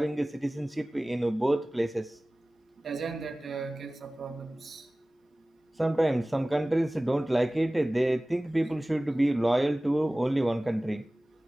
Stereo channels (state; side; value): normal; both; correlation 0.98